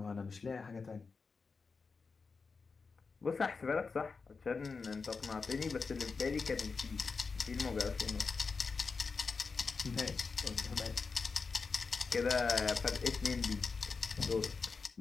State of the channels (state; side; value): quieter; right; 4.7 dB